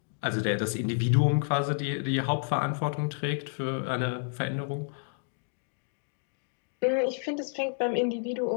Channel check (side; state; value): right; silent; digital silence